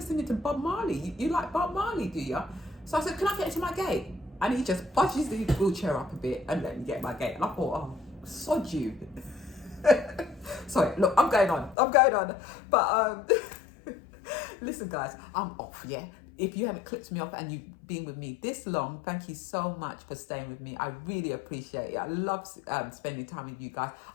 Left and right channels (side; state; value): right; drops out; at 11.8 s